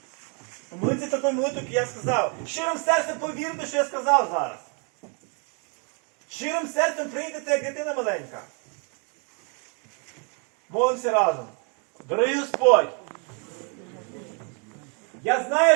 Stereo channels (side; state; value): left; quieter; 37.4 dB